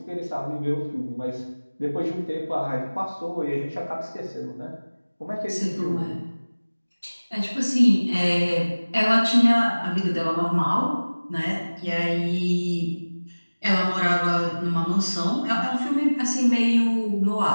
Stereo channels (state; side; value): inverted; both; correlation -1.00